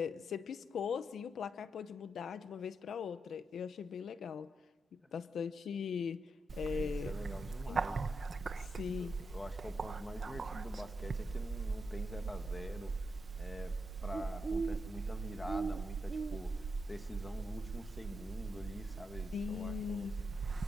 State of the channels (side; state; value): both; normal; correlation 0.84